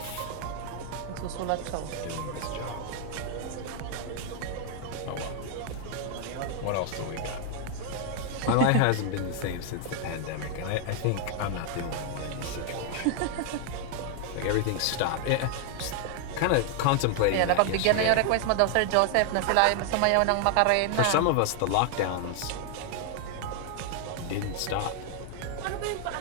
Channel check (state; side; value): different; both; correlation 0.00